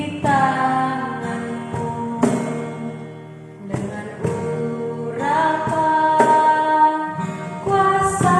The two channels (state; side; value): identical; both; correlation 1.00